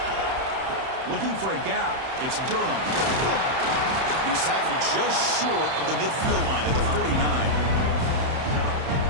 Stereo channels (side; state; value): left; late; 31 ms